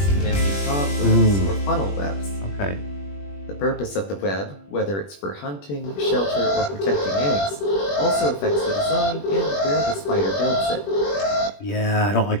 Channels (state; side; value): late; right; 21 ms